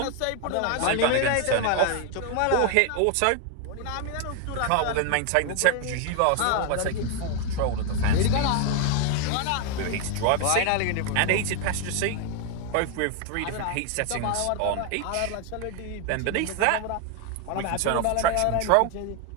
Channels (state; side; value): different; both; correlation 0.01